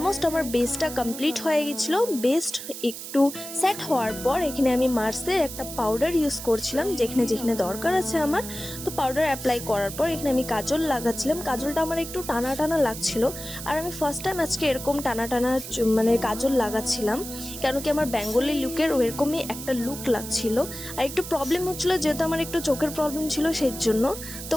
আমার বেসটা কমপ্লিট হয়ে গেছিলো। বেস্ট একটু সেট হওয়ার পর এখানে আমি মার্সের একটা পাউডার ইউজ করছিলাম, যেখানে যেখানে দরকার আছে আমার। তো পাউডার অ্যাপ্লাই করার পর এখানে আমি কাজল লাগাচ্ছিলাম। কাজলটা আমার একটু টানা টানা লাগছিল, আর আমি ফার্স্ট টাইম আজকে এরকম টানা টানা মানে কাজল লাগাচ্ছিলাম, কেন কি আমার বেঙ্গলি লুকের ওরকমই একটা লুক লাগছিল। আর একটু প্রবলেম হচ্ছিলো, যেহেতু আমার একটু চোখের প্রবলেম ছিল সেই জন্য। তো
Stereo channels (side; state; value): right; noise; hiss, 10 dB below the sound